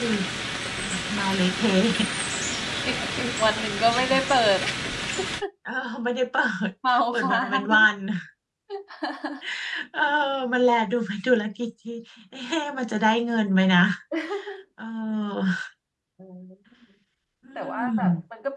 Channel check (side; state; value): both; identical; correlation 1.00